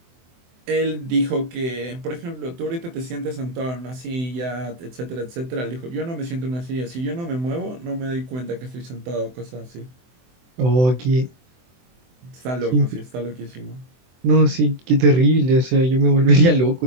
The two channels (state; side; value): late; left; 24 ms